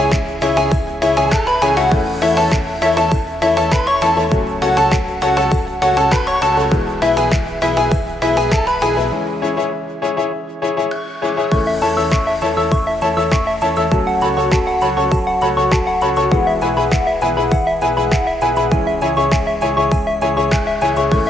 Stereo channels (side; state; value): both; normal; correlation 0.80